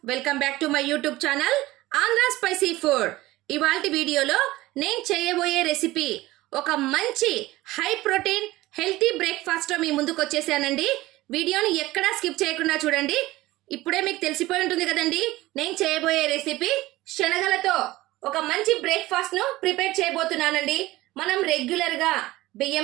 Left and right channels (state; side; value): quieter; left; 18.1 dB